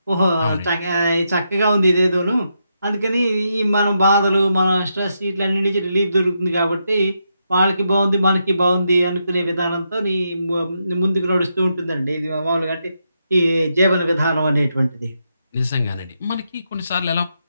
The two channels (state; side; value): inverted; both; correlation -0.82